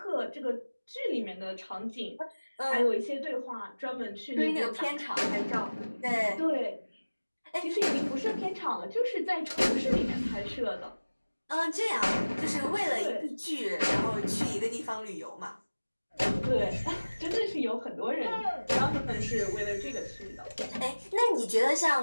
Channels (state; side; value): inverted; both; correlation -1.00